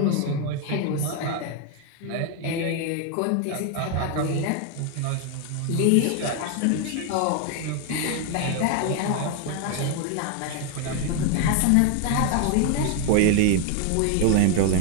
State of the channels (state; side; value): different; both; correlation 0.01